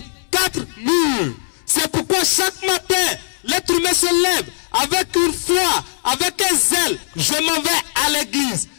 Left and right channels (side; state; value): right; silent; 63 dB below the other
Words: 4 murs. C'est pourquoi chaque matin, l'être humain se lève avec une foi, avec un zèle. Je m'en vais à l'église.